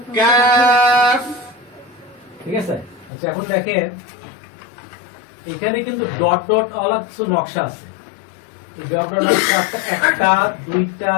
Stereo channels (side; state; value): right; drops out; at 3.1 s